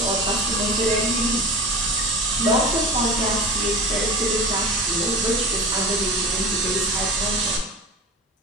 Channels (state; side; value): normal; both; correlation 0.31